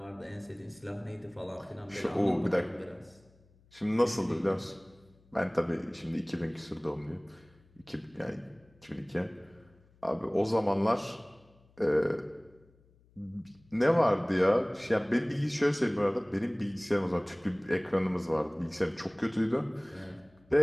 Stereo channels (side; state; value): left; noise; hum, 30 dB below the sound